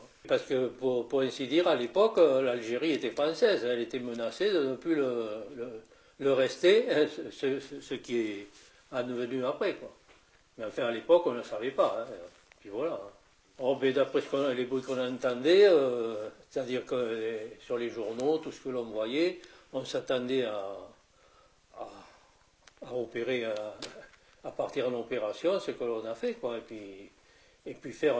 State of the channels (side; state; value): both; identical; correlation 1.00